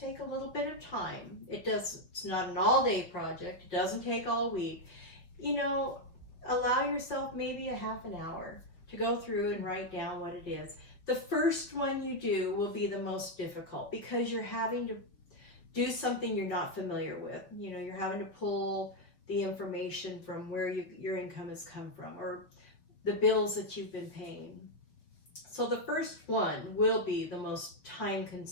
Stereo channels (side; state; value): right; late; 6.1 ms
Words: a little bit of time. It's not an all-day project. It doesn't take all week. You know, allow yourself maybe a half an hour to go through and write down what it is. The first one you do will be the most difficult because you're having to do something you're not familiar with. You know, you're having to pull the information from where your income has come from or the bills that you've been paying. So the first one will be the most time